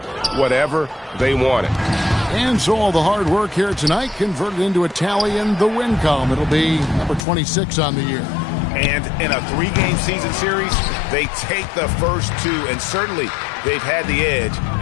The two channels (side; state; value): right; drops out; at 7.2 s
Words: whatever they wanted. And so all the hard work here tonight converted into a tally in the win column. It'll be number 26 on the year. And in a three-game season series, they take the first two, and certainly they've had the edge